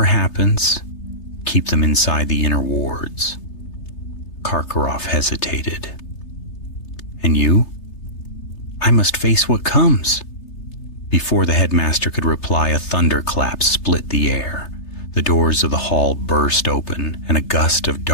happens, keep them inside the inner wards." Karkaroff hesitated. "And you?" "I must face what comes." Before the headmaster could reply, a thunderclap split the air. The doors of the hall burst open, and a gust of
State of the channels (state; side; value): late; right; 3.3 ms